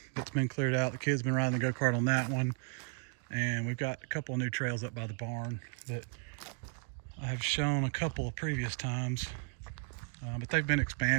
been cleared out. The kids been riding the go-kart on that one, and we've got a couple of new trails up by the barn that I have shown a couple of previous times, but they've been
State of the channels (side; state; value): left; quieter; 36.3 dB